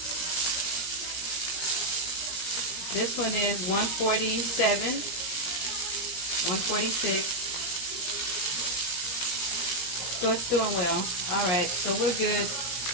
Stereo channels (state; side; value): late; right; 17 ms